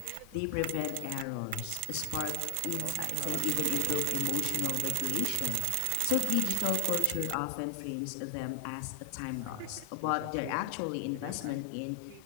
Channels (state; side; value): different; both; correlation 0.00